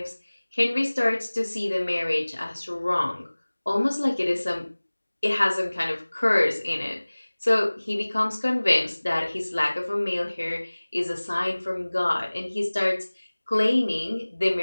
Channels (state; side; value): inverted; both; correlation -1.00